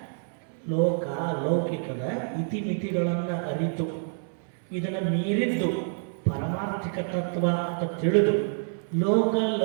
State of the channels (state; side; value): silent; left; 60 dB below the other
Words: ಲೌಕಿಕದ ಇತಿಮಿತಿಗಳನ್ನು ಅರಿತು ಇದನ್ನು ಮೀರಿದ್ದು ಪಾರಮಾರ್ಥಿಕ ತತ್ವ ಅಂತ ತಿಳಿದು